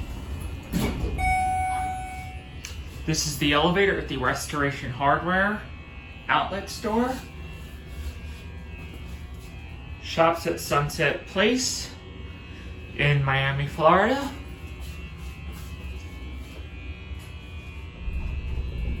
This is the elevator at the Restoration Hardware outlet store. Shops at Sunset Place in Miami, Florida.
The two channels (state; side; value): identical; both; correlation 1.00